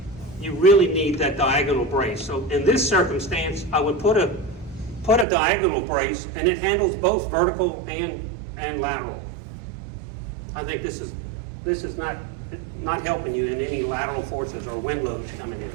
you really need that diagonal brace. So in this circumstance, I would put a diagonal brace, and it handles both vertical and lateral. I think this is not helping you in any lateral forces or wind loads coming in.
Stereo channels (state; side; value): drops out; left; at 5.2 s